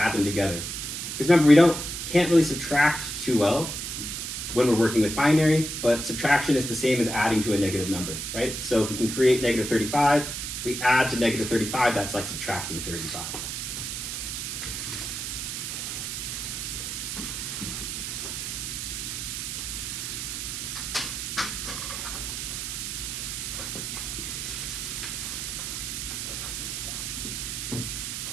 them together. Because remember, we can't really subtract too well when we're working with binary, but subtraction is the same as adding to a negative number, right? So if we can create -35, if we add to -35, that's like subtracting 35.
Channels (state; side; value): noise; right; hiss, 5 dB below the sound